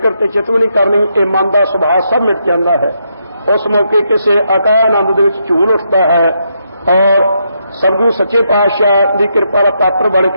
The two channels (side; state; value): both; inverted; correlation -0.79